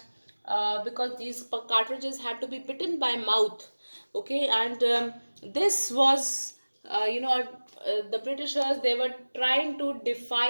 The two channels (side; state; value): both; inverted; correlation -1.00